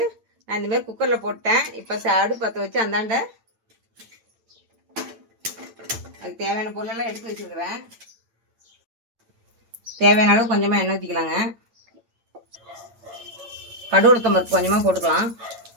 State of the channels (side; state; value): left; late; 8.9 ms